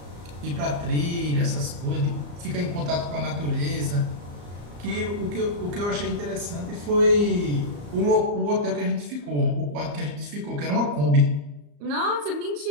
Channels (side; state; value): left; late; 34 ms